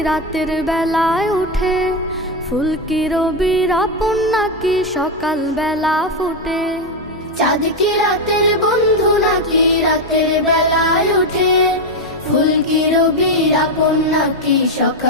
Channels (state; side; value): normal; both; correlation 0.07